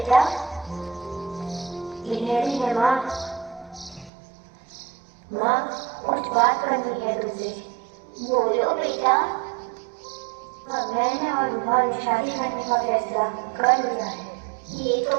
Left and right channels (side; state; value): left; drops out; at 4.1 s